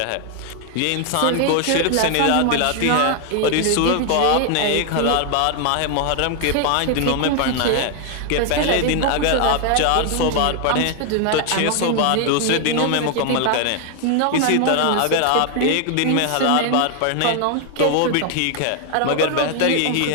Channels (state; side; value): different; both; correlation 0.00